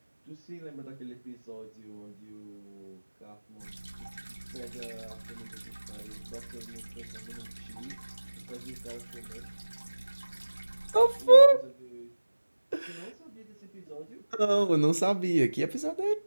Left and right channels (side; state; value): both; inverted; correlation -1.00